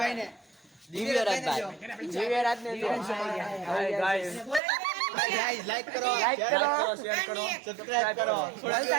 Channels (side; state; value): left; drops out; at 4.6 s